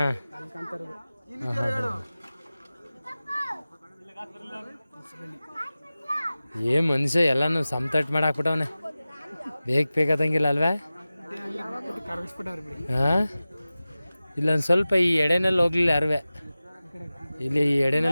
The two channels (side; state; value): both; inverted; correlation -0.96